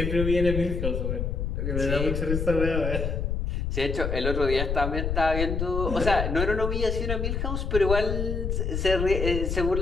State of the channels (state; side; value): noise; left; rumble, 1 dB below the sound